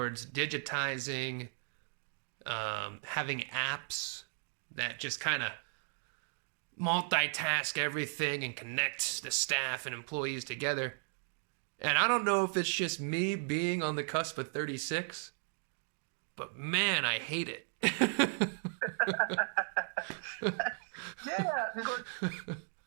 digitizing, having apps that just kind of multitask everything and connect the staff and employees together. And I don't know if it's just me being on the cusp of 36, but man, I hate it. Because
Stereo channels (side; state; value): left; silent; 54 dB below the other